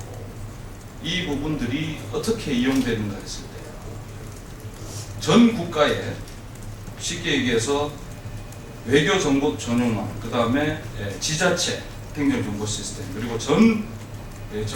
이 부분들이 어떻게 이용되는가 했을 때 전 국가에 쉽게 얘기해서 외교정보 전용망, 그 다음에 지자체 행정정보 시스템, 그리고 전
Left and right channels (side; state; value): both; identical; correlation 1.00